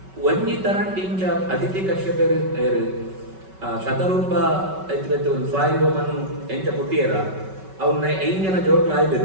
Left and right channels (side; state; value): left; late; 5.3 ms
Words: ಒಂಜಿ ತರಂಟಿಂಚ ಅದಿತಿ ಕಶ್ಯಪರು ಶತರೂಪ ಎತ್ತು ಸ್ವಾಯುಮನು ಎಂಚ ಪುಟ್ಟಿಯರ ಅವನ್ನ 5 ಜನ ಜೋಕ್ಲ